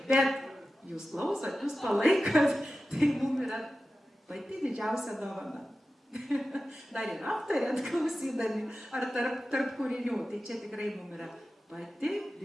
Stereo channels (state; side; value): normal; both; correlation 0.94